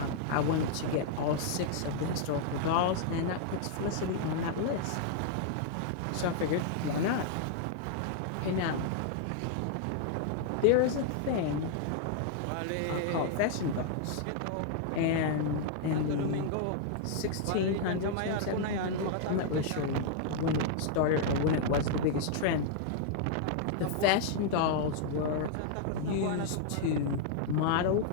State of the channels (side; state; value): both; different; correlation -0.01